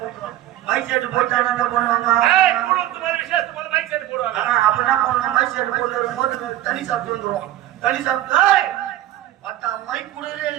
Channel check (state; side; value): quieter; left; 13.8 dB